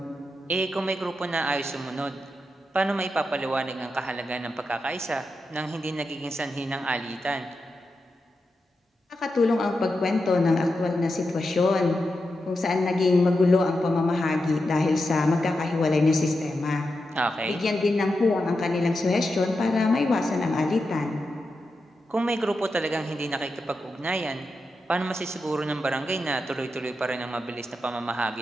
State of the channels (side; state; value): both; normal; correlation 0.88